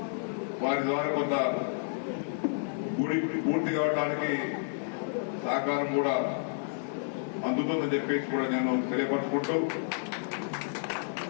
వారి ద్వారా కొంత గుడి పూర్తి కావడానికి సహకారం కూడా అందుతుందని చెప్పేసి కూడా నేను తెలియపరుచుకుంటూ,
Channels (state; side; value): silent; right; digital silence